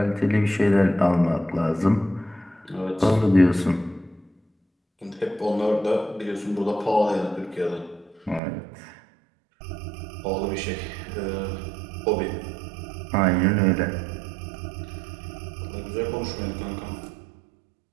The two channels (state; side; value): drops out; left; at 8.4 s